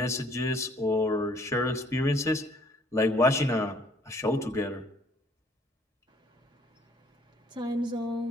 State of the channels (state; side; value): normal; both; correlation 0.60